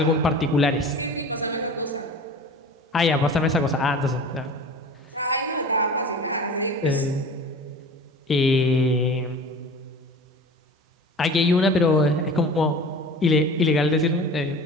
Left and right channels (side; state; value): both; normal; correlation 0.39